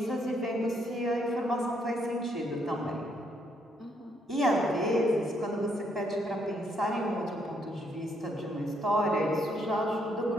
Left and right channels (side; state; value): both; normal; correlation 0.72